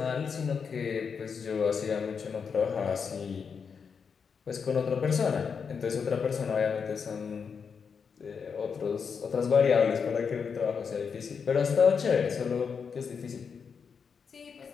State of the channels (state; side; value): quieter; right; 6.1 dB